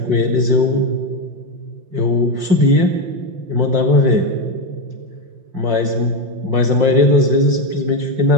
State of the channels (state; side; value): late; left; 5.6 ms